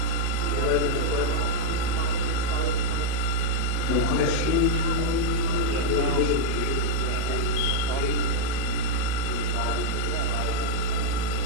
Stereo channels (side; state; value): both; different; correlation -0.01